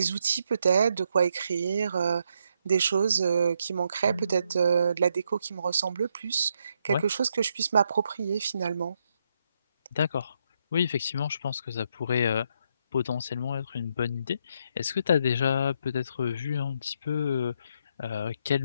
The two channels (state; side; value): inverted; both; correlation -0.77